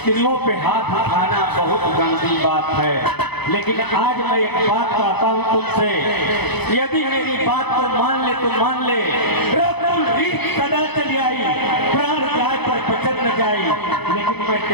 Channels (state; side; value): late; right; 0.98 ms